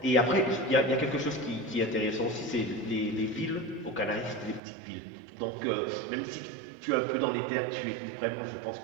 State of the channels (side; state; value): left; drops out; at 4.6 s